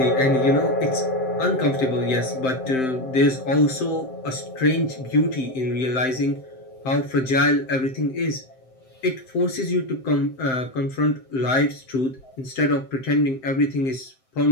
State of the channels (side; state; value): right; late; 7.7 ms